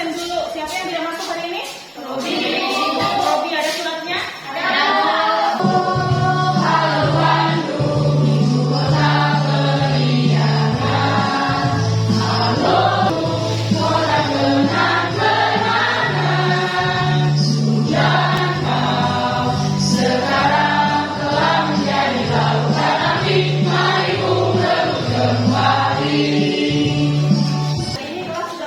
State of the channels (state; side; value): identical; both; correlation 1.00